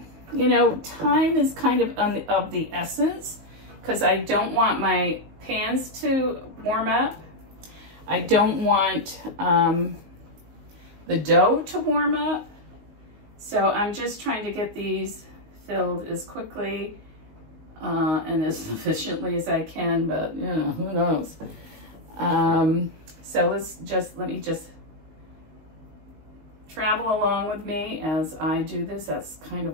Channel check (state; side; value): late; left; 19 ms